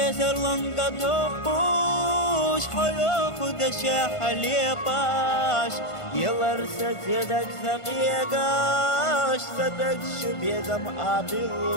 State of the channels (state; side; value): late; right; 1.5 ms